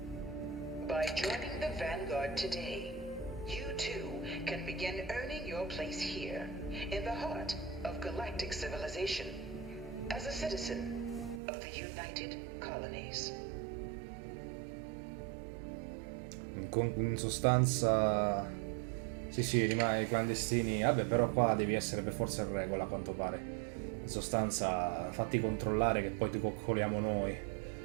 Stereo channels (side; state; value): left; drops out; at 11.4 s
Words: By joining the Vanguard today, you too can begin earning your place here, in the heart of galactic civilization, as a citizen of the United Colonies. In sostanza, sì, rimane clandestini. Vabbè, però qua devi essere per forza in regola, a quanto pare. In sostanza, fatti controllare che poi ti coccoliamo noi.